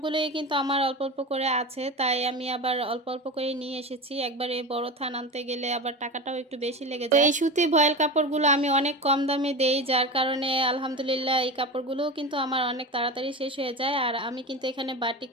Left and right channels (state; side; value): normal; both; correlation 0.26